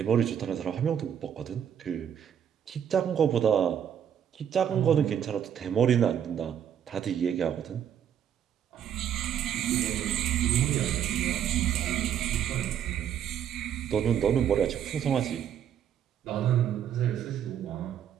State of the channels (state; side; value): quieter; left; 9.2 dB